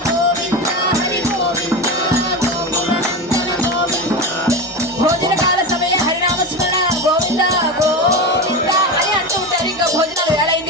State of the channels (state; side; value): normal; both; correlation 0.21